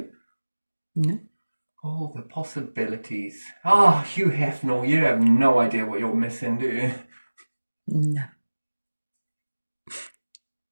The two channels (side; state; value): both; inverted; correlation -1.00